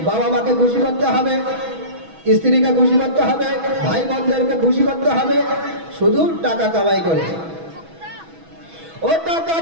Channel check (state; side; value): late; left; 6.1 ms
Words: বাবা মাকে খুশি করতে হবে, স্ত্রীকে খুশি করতে হবে, ভাই বোনদেরকে খুশি করতে হবে, শুধু টাকা কামাই করে। ও টাকা